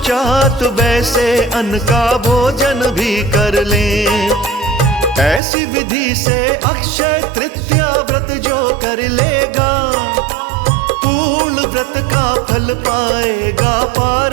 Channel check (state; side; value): drops out; left; at 5.4 s